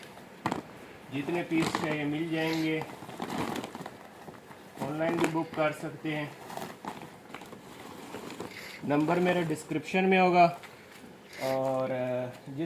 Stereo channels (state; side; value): identical; both; correlation 1.00